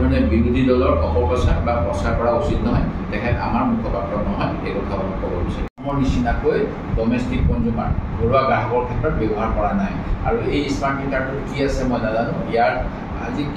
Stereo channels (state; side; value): identical; both; correlation 1.00